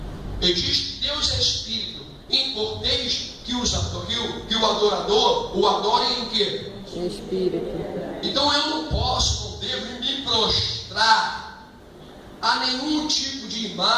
Ele diz que Deus é espírito. Importeis que o adorador o adore em quê? Em espírito. Então eu não posso, não devo me prostrar a nenhum tipo de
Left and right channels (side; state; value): both; identical; correlation 1.00